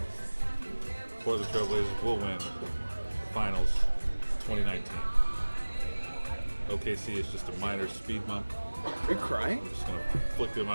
Portland Trail Blazers will win the finals 2019. OKC is just a minor speed bump. Are you crying? I'm just gonna flick them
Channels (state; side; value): inverted; both; correlation -1.00